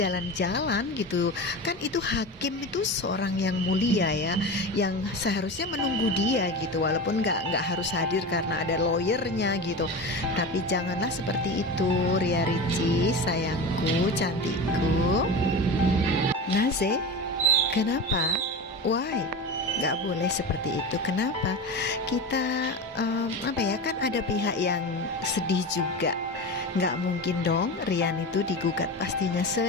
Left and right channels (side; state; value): both; normal; correlation 0.26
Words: gitu. Kan itu hakim itu seorang yang mulia ya, yang seharusnya menunggu dia gitu. Walaupun nggak harus hadir karena ada lawyernya gitu. Tapi janganlah seperti itu, Ria Ricis, sayangku, cantikku. Naze, kenapa? Why? nggak boleh seperti itu. Kenapa? Kita apa ya, kan ada pihak yang sedih juga. Nggak mungkin dong Rian itu digugat, pastinya